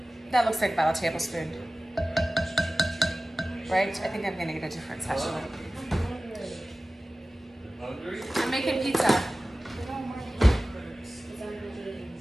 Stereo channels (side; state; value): both; normal; correlation 0.97